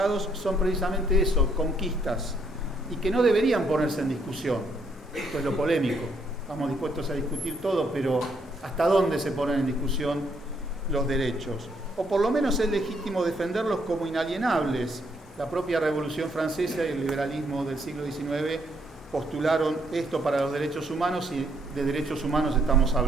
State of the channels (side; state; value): both; normal; correlation 0.71